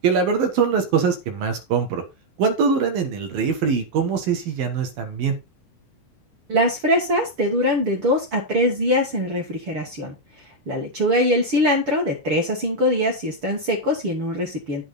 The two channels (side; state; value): left; late; 6.0 ms